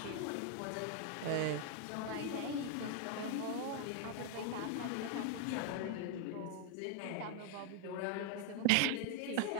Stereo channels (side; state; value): both; different; correlation 0.00